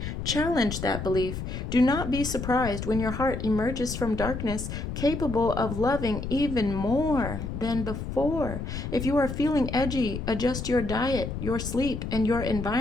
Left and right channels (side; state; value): left; noise; rumble, 6 dB below the sound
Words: challenge that belief. Do not be surprised when your heart emerges from darkness, capable of loving even more than before. If you are feeling edgy, adjust your diet, your sleep, and your